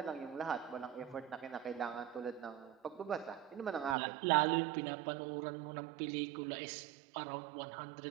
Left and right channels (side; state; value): left; drops out; at 4.0 s